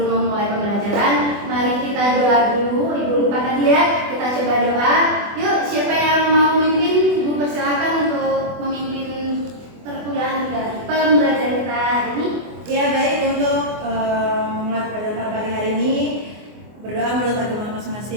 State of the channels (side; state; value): left; late; 24 ms